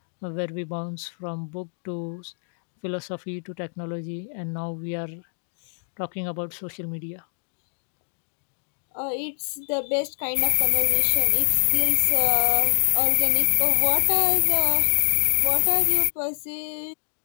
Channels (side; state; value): right; silent; digital silence